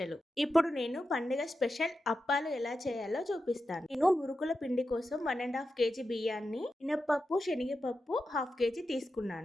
ఇప్పుడు నేను పండుగ స్పెషల్ అప్పాలు ఎలా చేయాలో చూపిస్తాను. నేను మురుకుల పిండి కోసం 1.5 కేజీ బియ్యాన్ని, మినప్పప్పు, శనగపప్పు 1/2 కేజీ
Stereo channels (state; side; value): normal; both; correlation 0.90